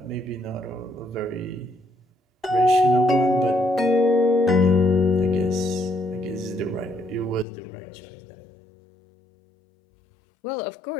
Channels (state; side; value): drops out; right; at 7.5 s